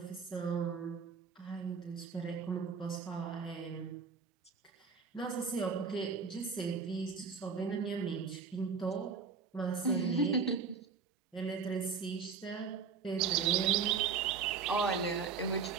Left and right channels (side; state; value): left; quieter; 5.7 dB